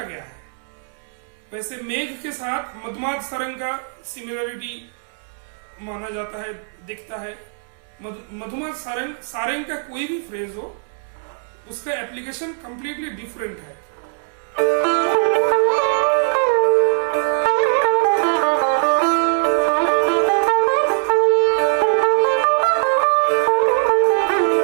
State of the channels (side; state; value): left; silent; digital silence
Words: गया है। वैसे मेघ के साथ मधुमाद सारंग का सिमिलरिटी माना जाता है, दिखता है। मधुमाद सारंग का कोई भी फ्रेज हो उसका एप्लीकेशन कंप्लीटली डिफरेंट है।